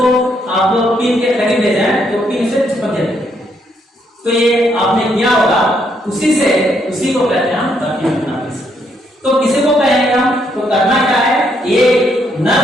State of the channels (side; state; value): both; normal; correlation 0.74